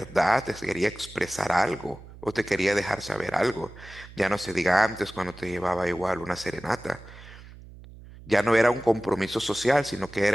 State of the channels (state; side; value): noise; right; hum, 18 dB below the sound